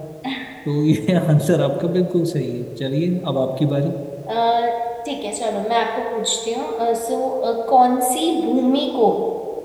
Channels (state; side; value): identical; both; correlation 1.00